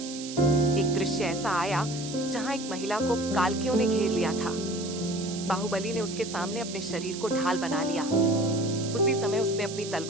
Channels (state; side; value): noise; right; hiss, 10 dB below the sound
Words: एक दृश्य ऐसा आया जहां एक महिला को कालकियों ने घेर लिया था। बाहुबली ने उसके सामने अपने शरीर को ढाल बना लिया। उसी समय उसने अपनी